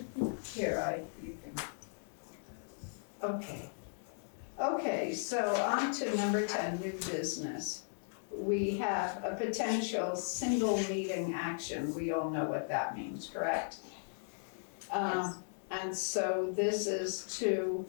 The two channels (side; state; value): right; silent; digital silence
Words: here, you can. Okay. Okay, so on to number 10, new business. We have a potential single meeting action. We all know what that means, correct? Yes. And so this is to